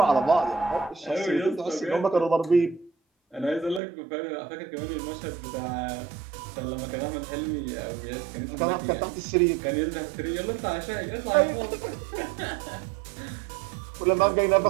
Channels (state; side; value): drops out; left; at 3.8 s